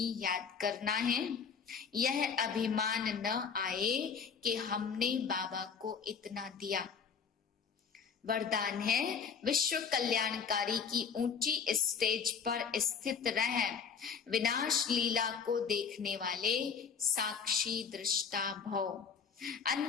याद करना है। यह अभिमान न आए कि हमने बाबा को इतना दिया। वरदान है, विश्व कल्याणकारी की ऊंची स्टेज पर स्थित रह विनाश लीला को देखने वाले साक्षी दृष्टा भव।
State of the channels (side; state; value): right; quieter; 6.5 dB